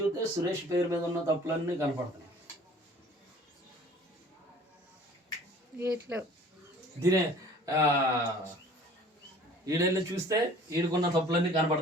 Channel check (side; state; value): both; normal; correlation 0.49